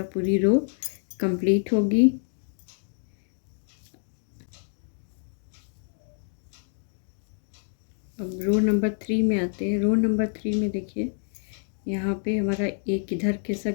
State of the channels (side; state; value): right; silent; digital silence